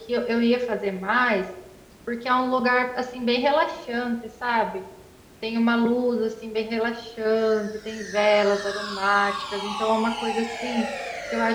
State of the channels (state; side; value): identical; both; correlation 1.00